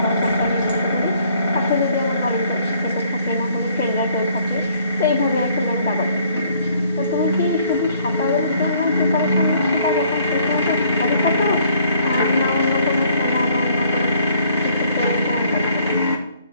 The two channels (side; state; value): both; inverted; correlation -0.63